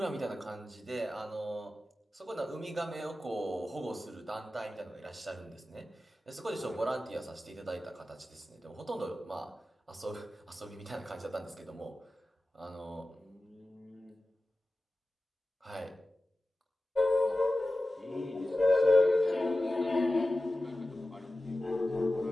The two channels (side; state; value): both; normal; correlation 0.95